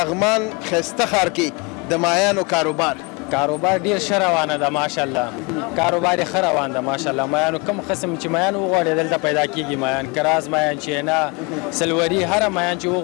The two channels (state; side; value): quieter; right; 29.3 dB